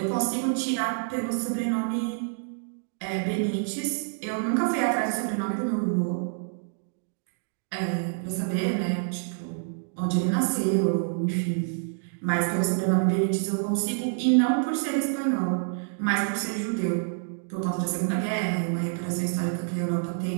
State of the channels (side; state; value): left; silent; digital silence